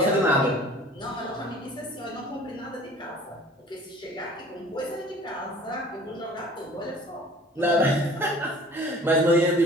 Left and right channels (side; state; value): both; normal; correlation 0.48